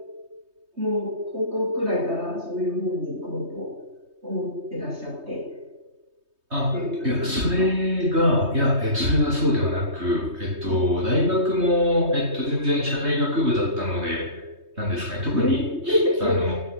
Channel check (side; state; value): left; late; 3.2 ms